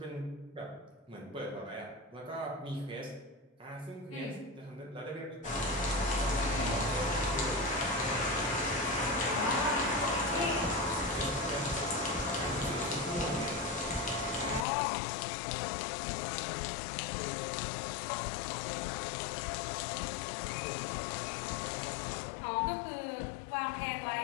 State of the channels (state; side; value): drops out; right; at 14.7 s